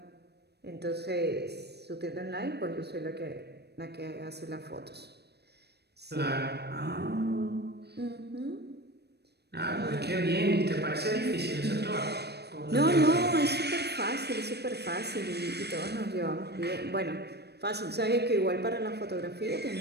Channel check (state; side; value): late; left; 0.48 ms